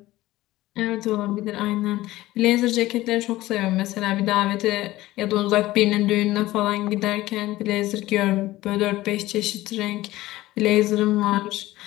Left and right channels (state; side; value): quieter; right; 17.0 dB